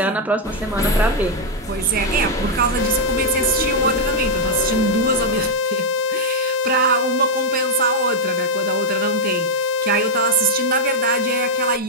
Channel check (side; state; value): both; normal; correlation -0.02